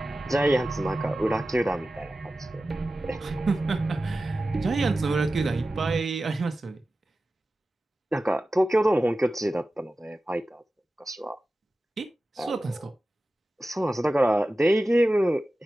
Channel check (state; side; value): normal; both; correlation 0.95